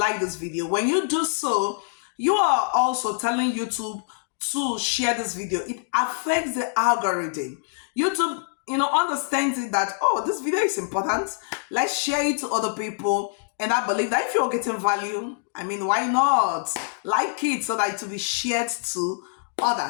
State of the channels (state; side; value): silent; right; digital silence